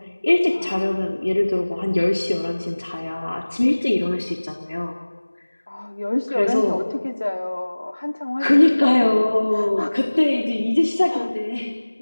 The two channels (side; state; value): both; inverted; correlation -1.00